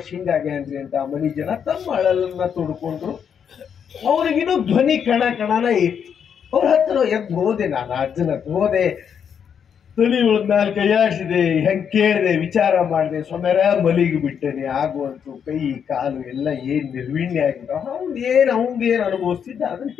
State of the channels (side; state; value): right; quieter; 7.7 dB